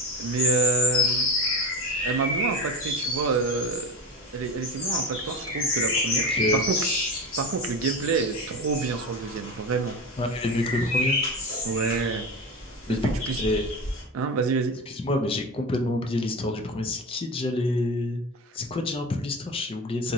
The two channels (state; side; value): normal; both; correlation 0.25